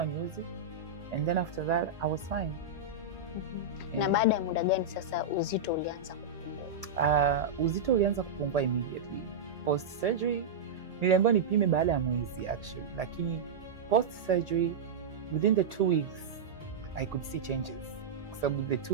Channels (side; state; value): left; quieter; 4.2 dB